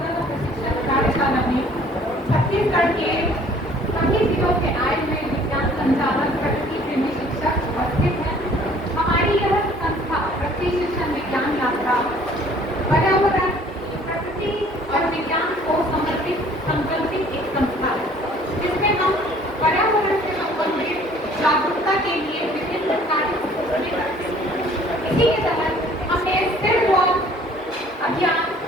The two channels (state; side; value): normal; both; correlation 0.55